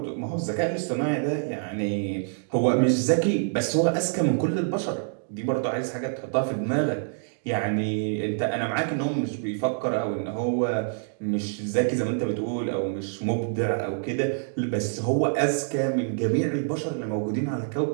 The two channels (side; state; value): left; silent; digital silence